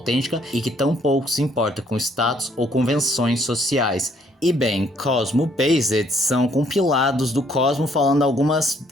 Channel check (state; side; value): normal; both; correlation 0.66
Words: e que tão pouco se importa com status ou convenções sociais. E bem, Cosmo Based são compilados do Cosmo falando algumas